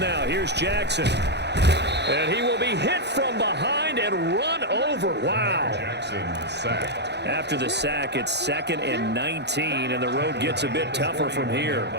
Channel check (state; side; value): late; left; 0.50 ms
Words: here's Jackson. And he will be hit from behind and run over. Wow. Jackson sacked. After the sack, it's 2nd and 19, and the road gets a bit tougher from here.